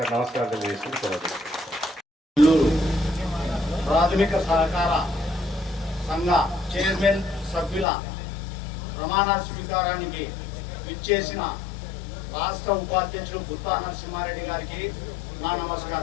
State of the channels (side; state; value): right; drops out; at 7.9 s